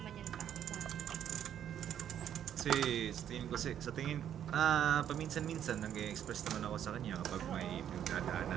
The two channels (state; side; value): quieter; left; 9.9 dB